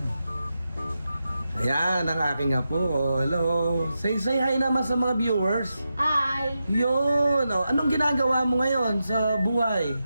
Ayan, ang aking apo. Oh, hello. Say hi naman sa mga viewers. Hi! Yun. Oh, anong ginagawa mo ngayon sa buhay?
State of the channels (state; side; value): inverted; both; correlation -0.89